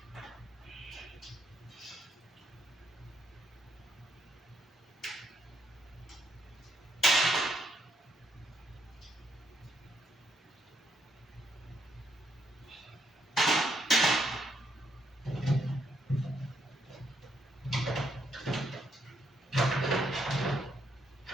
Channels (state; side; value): normal; both; correlation 0.75